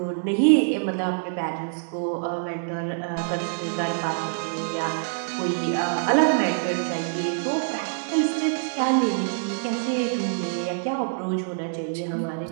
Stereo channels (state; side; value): silent; left; digital silence